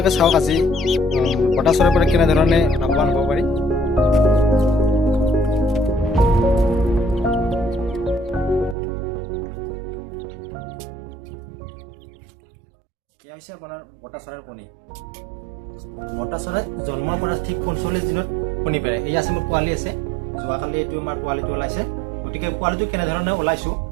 চাওক আজি বটা চৰাইৰ পৰা কেনেধৰণে লাভৱান হ'ব পাৰি। এয়া হৈছে আপোনাৰ বটা চৰাইৰ কণী। বটা চৰাই জন্মৰ পৰা ঠিক ৪৫ দিনত কণী পাৰে। এই আছে মোৰ পোৱালি আছে, যোৱাকালি এইটো আমাৰ পোৱালিটো ওলাইছে। গতিকে পোৱালিটো কেনেধৰণে ওলাইছোঁ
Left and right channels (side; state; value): left; drops out; at 8.8 s